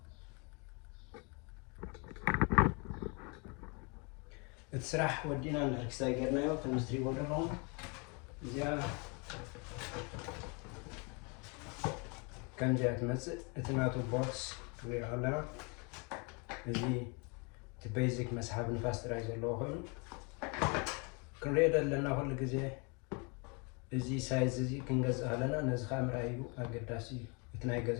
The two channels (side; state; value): right; quieter; 32.5 dB